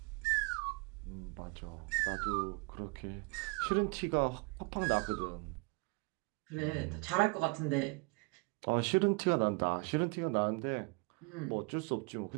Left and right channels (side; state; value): left; quieter; 31.1 dB